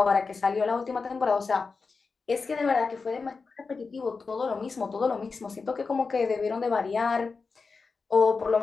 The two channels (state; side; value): quieter; right; 4.6 dB